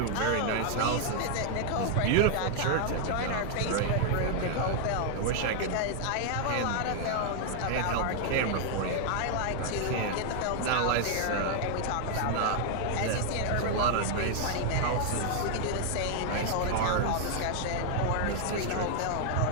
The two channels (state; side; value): different; both; correlation 0.00